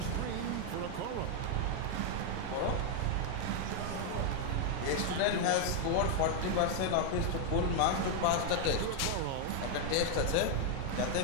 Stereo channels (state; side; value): different; both; correlation 0.00